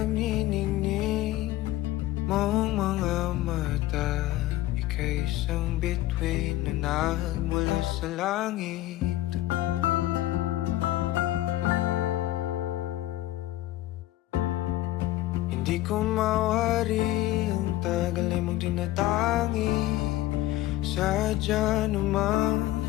mong mga mata. Ika'y isang bituin na nagmula sa langit. Hindi ko mawari ang tagal ay mong tinatangi. Sadya namang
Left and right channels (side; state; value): right; quieter; 15.5 dB